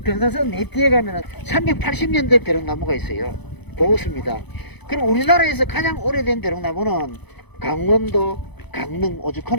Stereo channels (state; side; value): late; right; 0.99 ms